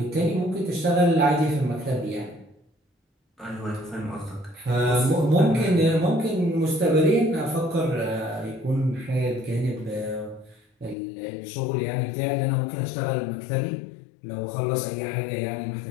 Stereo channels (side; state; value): right; drops out; at 11.0 s